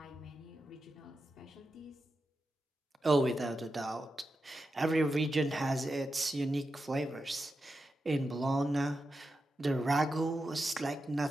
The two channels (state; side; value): normal; both; correlation 0.89